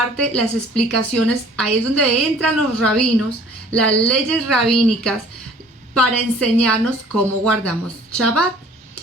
las explicaciones, ahí es donde entran los rabinos, las leyes rabínicas, para enseñarnos cómo guardamos Shabbat.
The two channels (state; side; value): normal; both; correlation 0.53